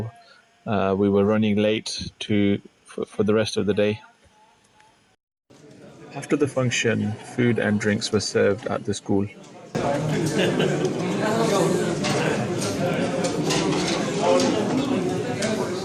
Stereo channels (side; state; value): both; identical; correlation 1.00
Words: We were running late for the rest of the day. After the function, food and drinks were served at the school.